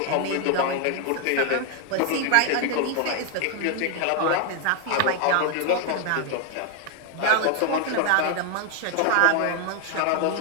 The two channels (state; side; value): different; both; correlation 0.01